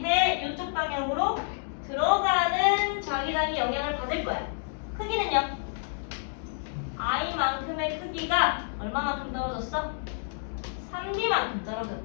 이쪽 방향으로 들어가는 자기장이 영향을 받을 거야. 크기는요? I만큼의 크기가 얼마만큼 떨어졌어? 3D만큼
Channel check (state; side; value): silent; right; digital silence